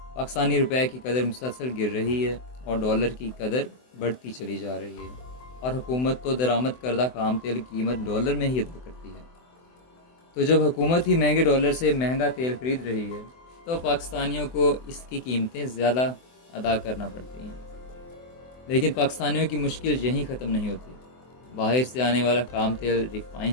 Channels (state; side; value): late; right; 24 ms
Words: پاکستانی روپے کی قدر مسلسل گر رہی ہے اور ڈالر کی قدر بڑھتی چلی جا رہی ہے، اور حکومت تو درآمد کردہ خام تیل کی قیمت ڈالر میں ہی ادا کرتی ہے۔ تو جب حکومت ہی مہنگے ڈالر سے مہنگا تیل خرید رہی ہے تو پاکستانیوں کو اس کی قیمتیں زیادہ ادا کرنا پڑتی ہیں۔ لیکن پاکستانیوں کی مشکل یہیں ختم نہیں ہوتی۔ باہر سے آنے والا خام تیل ریفائن